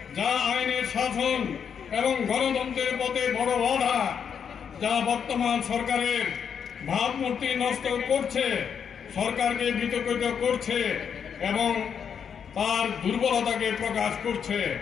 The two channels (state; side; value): quieter; right; 7.4 dB